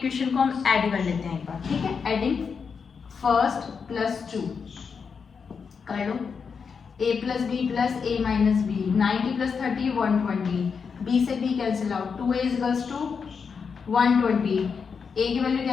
को हम ऐड कर लेते हैं एक बार। ठीक है, एडिंग फर्स्ट प्लस 2 कर लो, a plus b plus a minus b, 90 plus 30 120, b से b cancel out, 2a equals to 120, a की वैल्यू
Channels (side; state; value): right; quieter; 5.9 dB